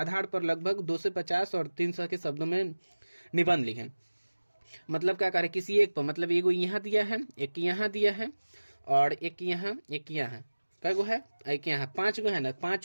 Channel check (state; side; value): inverted; both; correlation -1.00